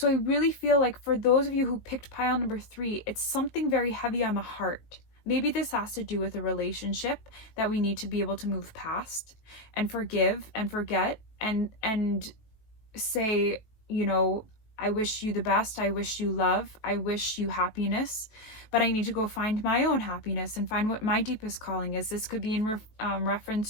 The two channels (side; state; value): right; late; 19 ms